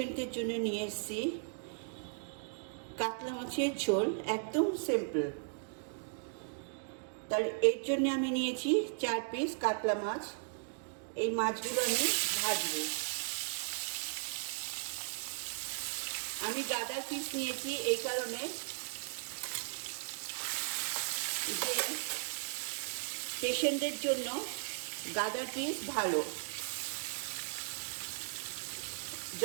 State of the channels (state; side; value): silent; left; digital silence